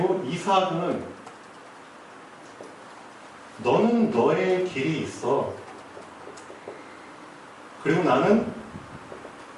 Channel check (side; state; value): both; identical; correlation 1.00